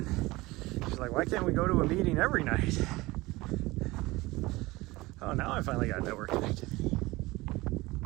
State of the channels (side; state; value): left; quieter; 20.8 dB